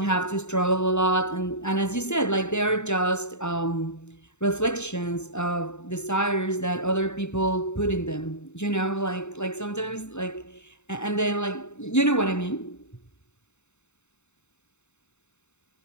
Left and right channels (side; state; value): right; late; 0.82 ms